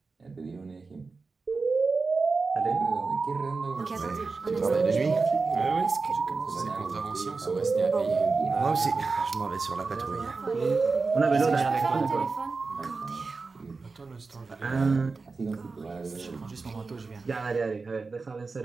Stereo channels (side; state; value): left; quieter; 4.2 dB